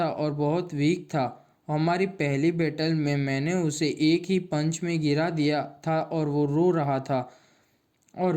और बहुत वीक था। हमारी पहली बैटल में मैंने उसे एक ही पंच में गिरा दिया था और वो रो रहा था। और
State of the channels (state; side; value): identical; both; correlation 1.00